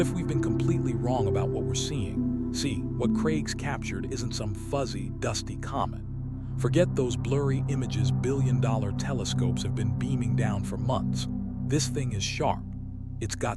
we've been completely wrong about what we're seeing? See, what Craigs captured isn't some fuzzy, dusty comet. Forget those blurry images billion-dollar telescopes have been beaming down for months. This thing is sharp. It's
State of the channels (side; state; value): both; identical; correlation 1.00